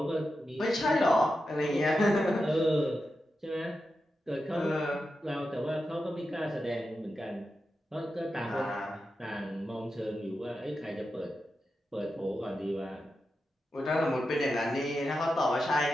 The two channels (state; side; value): normal; both; correlation 0.89